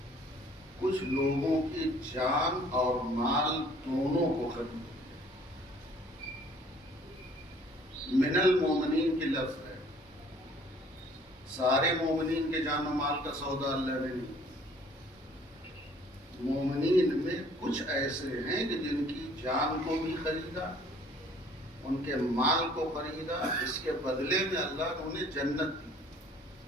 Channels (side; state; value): both; normal; correlation 0.56